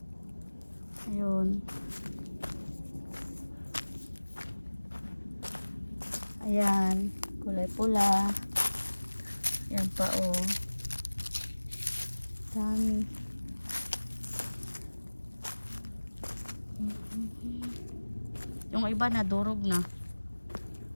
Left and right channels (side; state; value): both; inverted; correlation -1.00